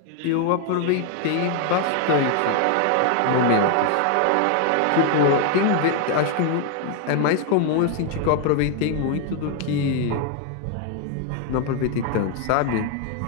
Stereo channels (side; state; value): both; different; correlation 0.01